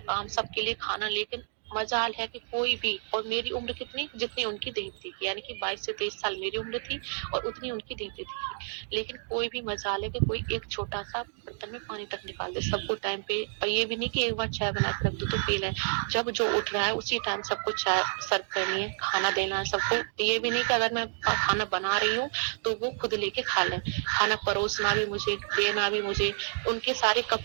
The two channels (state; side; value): silent; left; digital silence